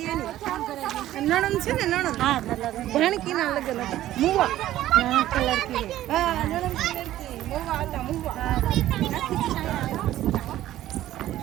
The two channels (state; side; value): quieter; left; 13.8 dB